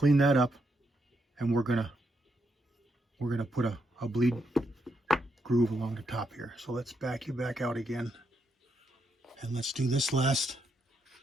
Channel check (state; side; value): normal; both; correlation 0.80